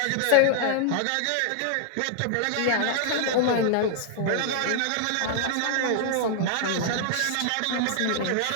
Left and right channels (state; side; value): different; both; correlation 0.00